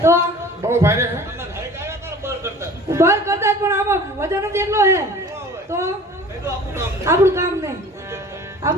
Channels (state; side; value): normal; both; correlation 0.45